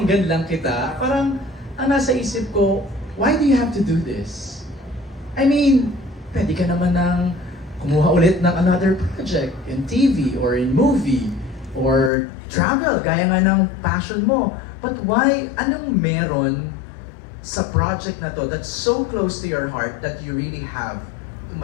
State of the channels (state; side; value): drops out; right; at 12.1 s